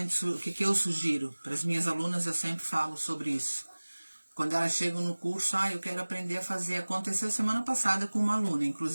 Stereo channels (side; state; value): both; inverted; correlation -1.00